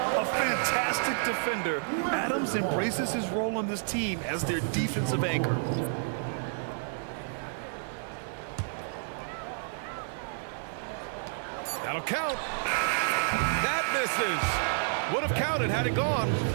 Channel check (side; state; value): left; silent; digital silence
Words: a fantastic defender. Adams embraces his role on this team as their defensive anchor. That'll count. That misses. Would have counted had it gone.